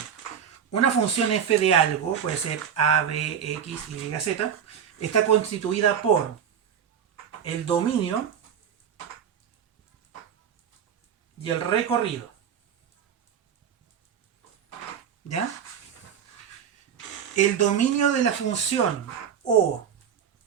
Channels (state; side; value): quieter; left; 8.3 dB